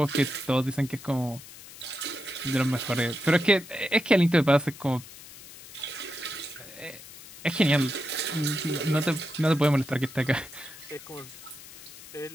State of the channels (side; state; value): left; noise; hiss, 17 dB below the sound